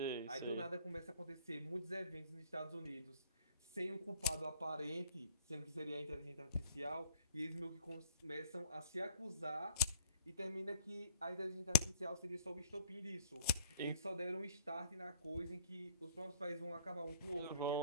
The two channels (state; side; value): inverted; both; correlation -0.56